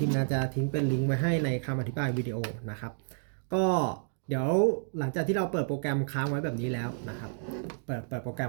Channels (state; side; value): silent; left; digital silence